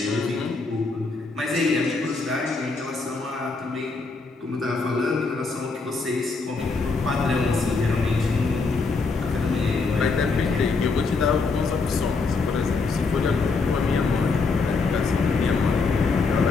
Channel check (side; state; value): right; quieter; 4.2 dB